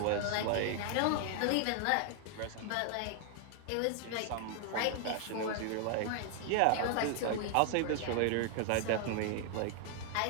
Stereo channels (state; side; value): different; both; correlation 0.00